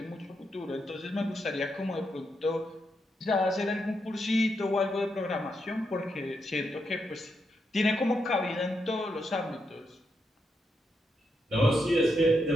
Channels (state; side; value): normal; both; correlation 0.82